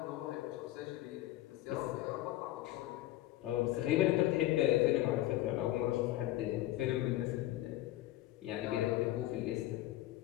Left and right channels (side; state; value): right; quieter; 15.3 dB